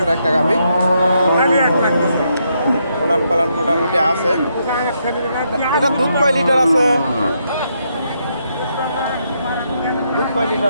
একটা গাভী। পালান মোটামুটি আছে। এটা দুধ কয় লিটার আছে? দুধ কয়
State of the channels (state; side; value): inverted; both; correlation -0.78